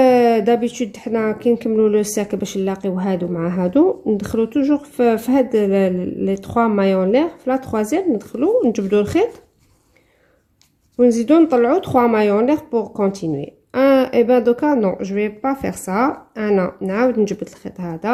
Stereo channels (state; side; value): identical; both; correlation 1.00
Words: دابيتود حنا كي نكملوا لو سيركل باش نلاقيو هادو مع هادو ندخلو توجور في هاد لي 3 مايون لير في لا تروازيام ندخلو نجبدوا الخيط ونزيدو نطلعو 3 مايون لير بور كونتينيي. et ben دوكا نو جو في با فير سا. انا نعاود نجبد الخيط